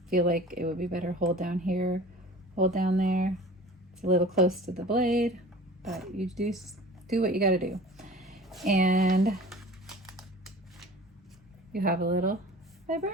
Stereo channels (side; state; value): both; normal; correlation 0.42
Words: feel like it would be better, hold down here, hold down there. It's a little close to the blade, but you do what you got to do. And you have a little